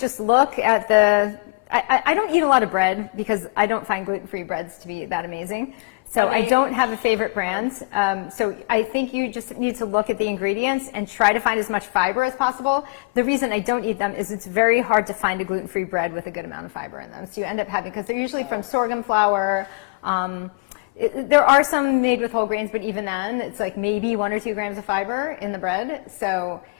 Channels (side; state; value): right; quieter; 29.1 dB